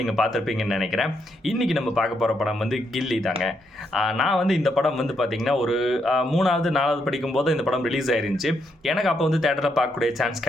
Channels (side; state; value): both; normal; correlation 0.78